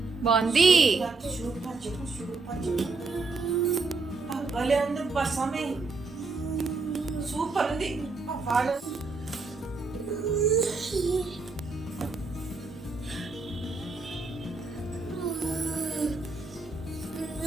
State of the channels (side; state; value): left; quieter; 4.0 dB